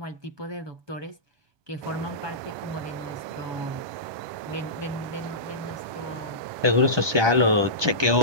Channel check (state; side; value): late; left; 1.2 ms